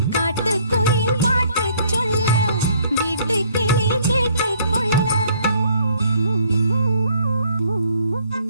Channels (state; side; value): inverted; both; correlation -0.62